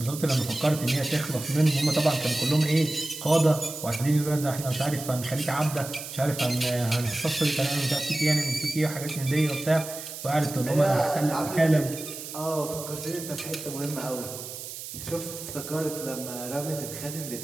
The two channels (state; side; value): noise; right; hiss, 10 dB below the sound